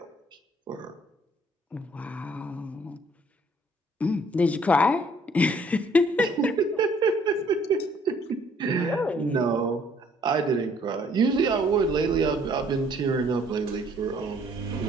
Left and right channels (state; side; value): normal; both; correlation 0.61